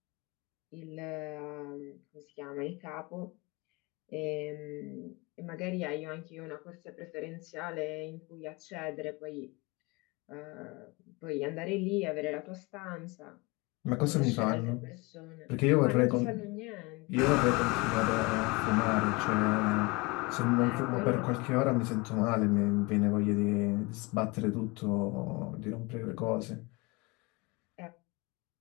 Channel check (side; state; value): right; quieter; 25.5 dB